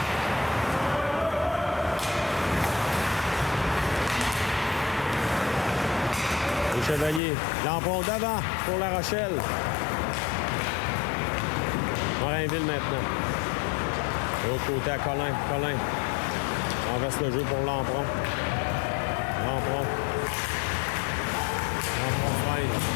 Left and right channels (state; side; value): drops out; right; at 7.2 s